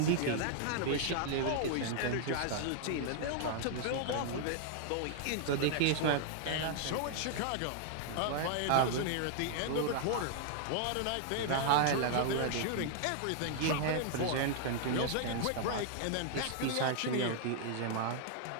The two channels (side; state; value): both; different; correlation -0.01